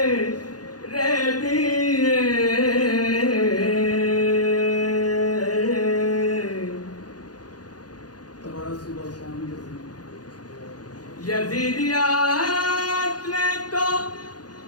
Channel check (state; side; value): late; right; 0.69 ms